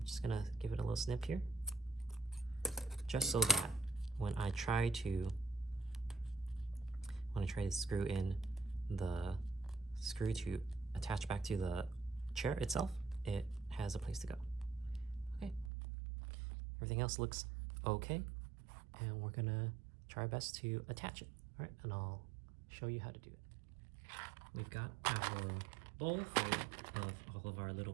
just gonna give it a little snip here, just so that when I try to screw in the screw to attach back to the chair itself, it has a place to go. Okay, everything else looks okay, and we're gonna try our best to attach it. All right, and I'll show you how to do it. We've got our bowl full of all of our little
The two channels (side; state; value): left; drops out; at 15.7 s